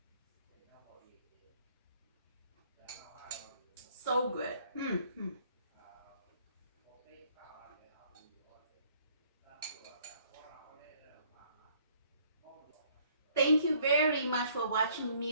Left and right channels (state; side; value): inverted; both; correlation -0.62